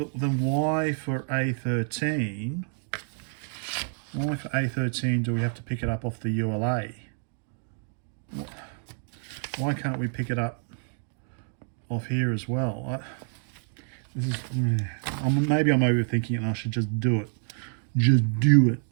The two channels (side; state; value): left; silent; 59 dB below the other